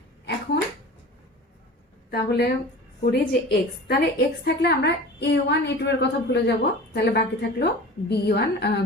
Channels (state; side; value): normal; both; correlation 0.38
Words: এখন তাহলে করি যে x, তাহলে x থাকলে আমরা A1 A2 এর কথা ভুলে যাব। তাহলে বাকি থাকলো B1